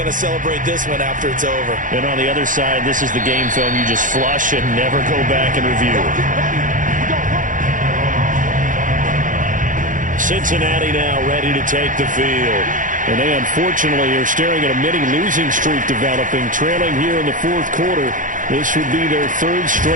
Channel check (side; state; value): left; late; 0.38 ms